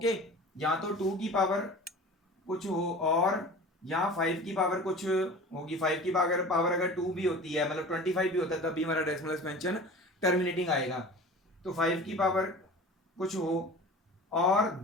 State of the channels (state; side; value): normal; both; correlation 0.39